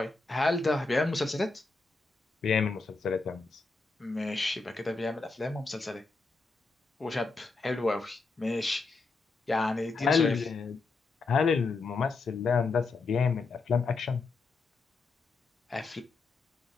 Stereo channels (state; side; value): quieter; right; 4.0 dB